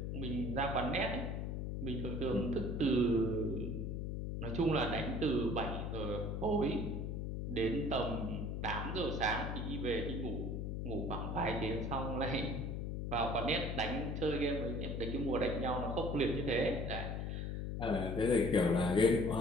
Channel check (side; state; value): left; noise; hum, 3 dB below the sound